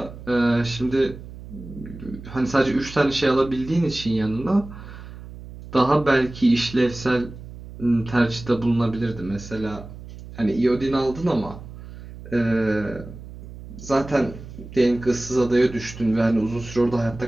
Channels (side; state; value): right; noise; hum, 14 dB below the sound